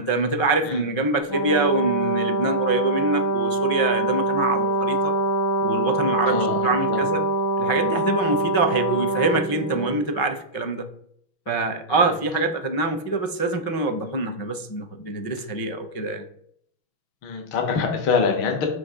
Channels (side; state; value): right; late; 6.1 ms